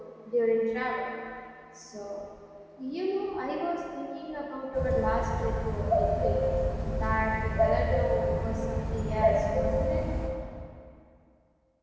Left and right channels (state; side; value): identical; both; correlation 1.00